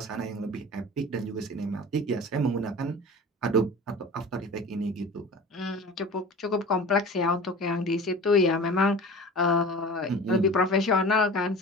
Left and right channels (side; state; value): both; normal; correlation 0.37